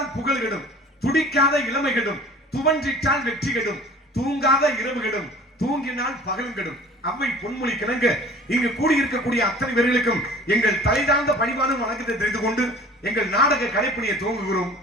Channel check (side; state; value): both; normal; correlation 0.46